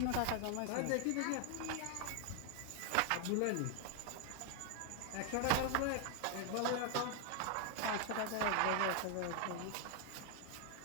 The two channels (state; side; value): different; both; correlation 0.00